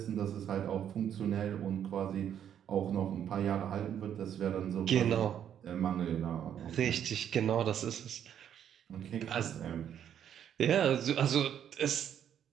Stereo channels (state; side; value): quieter; left; 9.4 dB